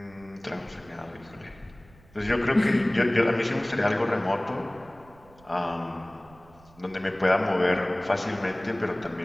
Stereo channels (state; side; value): noise; right; rumble, 26 dB below the sound